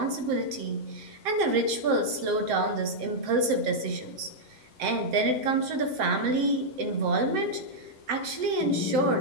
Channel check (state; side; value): late; left; 7.7 ms